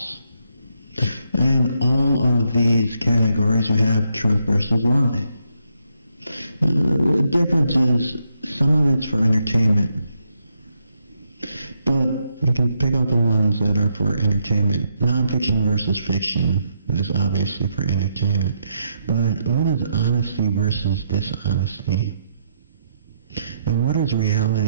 In all of these categories, we have truth versus lie. The difference is some of it's for entertainment, but you can pick out the ones that are for entertainment. Non-fiction versus fiction is obviously for entertainment, but what is honesty versus dishonesty? And what is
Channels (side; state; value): both; inverted; correlation -0.78